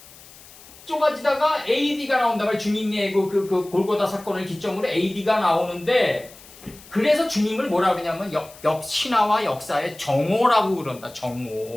좁아지다가 AD가 나온다. 주님의 그 골고다 사건을 기점으로 AD가 나오는데 그래서 주님을 뭐라 그러냐면 신화와 역사의 정오라고 그런다.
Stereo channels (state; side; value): noise; left; hiss, 21 dB below the sound